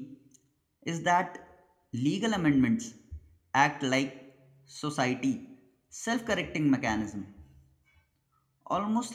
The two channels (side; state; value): both; identical; correlation 1.00